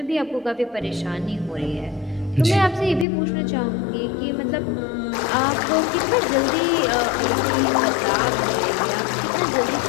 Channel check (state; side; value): drops out; right; at 3.1 s